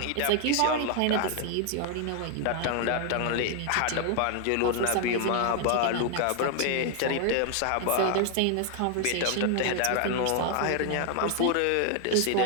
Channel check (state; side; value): different; both; correlation 0.00